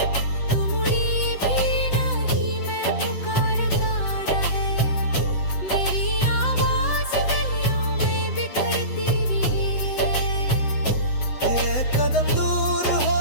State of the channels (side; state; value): right; late; 7.9 ms